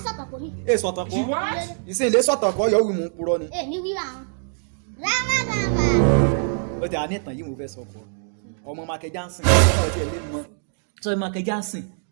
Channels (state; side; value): silent; left; digital silence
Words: kò ní. Sọ̀tàn kọ́ ìsìn ilé sọ̀tàn kọ́ yọ wí mú purọ́ ni. Ní wíwá wọn. Grandma. Ó ti àní ìtàn yìí mo fẹ́ sọ fún ọ ọmọ Michael Johnson ọ̀rọ̀ tí ẹ lè mọ sọ Michael Johnson